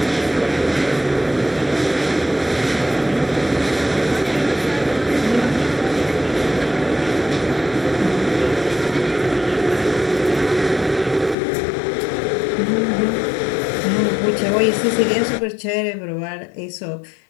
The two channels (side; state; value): right; drops out; at 11.4 s